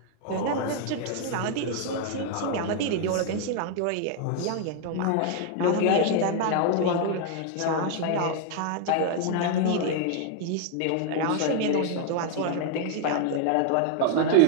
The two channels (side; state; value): both; different; correlation 0.00